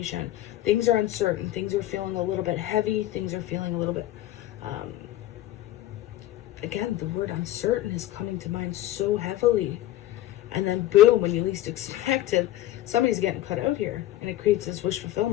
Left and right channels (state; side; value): quieter; right; 14.3 dB